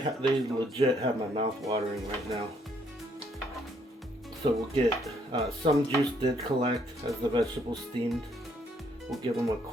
legit have my mouth watering right now. So we'll get some juice did collect as the vegetables steamed. We'll give them a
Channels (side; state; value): both; normal; correlation 0.69